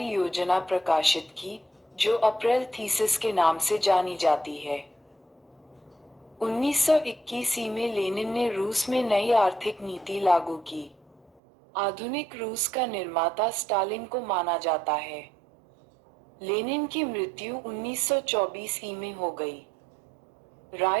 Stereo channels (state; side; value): drops out; left; at 11.4 s